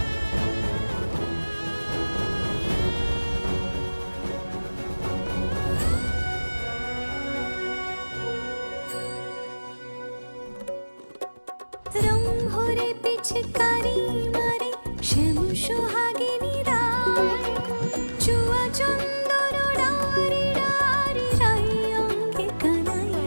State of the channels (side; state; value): both; inverted; correlation -1.00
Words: রং ভরে পিচকারি মারে শ্যাম সোহাগিনী রায়, চুয়া চন্দন ডারি ডারি রাই অঙ্গে কানাই।